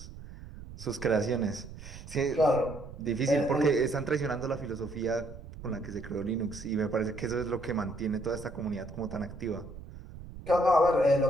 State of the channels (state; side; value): noise; right; rumble, 14 dB below the sound